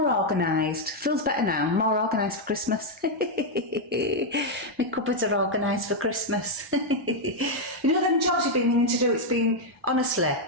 organised. Feels better now. More organised for Christmas. My cupboards are organised for Christmas. You know them jobs you've been meaning to do? It's been, honestly,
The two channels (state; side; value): normal; both; correlation 0.00